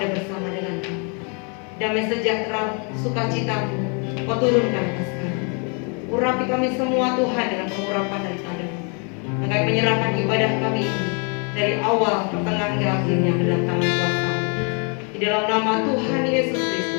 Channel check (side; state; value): right; quieter; 36.9 dB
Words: bersama dengan kami. Damai sejahtera, sukacita-Mu Kau turunkan atas kami. Urapi kami semua Tuhan dengan pengurapan daripada-Mu. Dan kami menyerahkan ibadah kami ini dari awal, pertengahan hingga akhirnya ke dalam tangan kuasa-Mu. Di dalam nama Tuhan Yesus